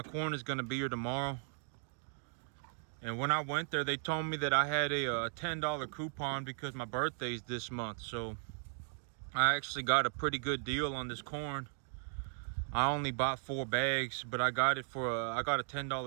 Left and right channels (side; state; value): left; silent; 53 dB below the other